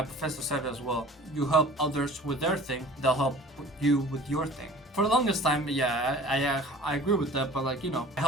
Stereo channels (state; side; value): normal; both; correlation 0.45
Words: professor said it as well. You help others with their thing, they'll help you with your thing. For the longest time, yeah, I agree with that, but like, you know, I